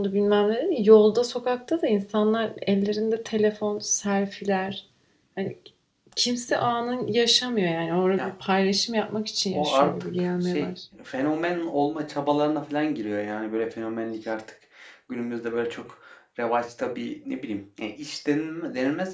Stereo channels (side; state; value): both; identical; correlation 1.00